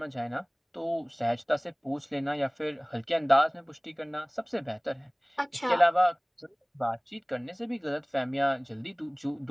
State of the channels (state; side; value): identical; both; correlation 1.00